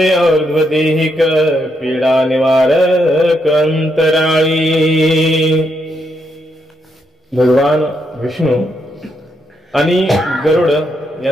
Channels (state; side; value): normal; both; correlation 0.79